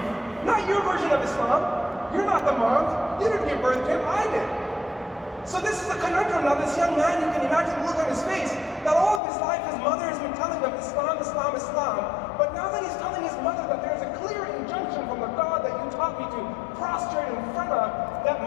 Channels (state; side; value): drops out; right; at 9.2 s